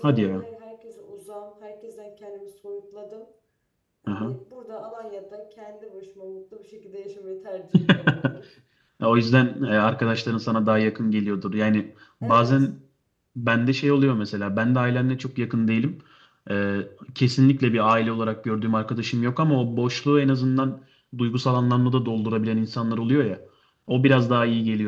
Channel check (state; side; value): identical; both; correlation 1.00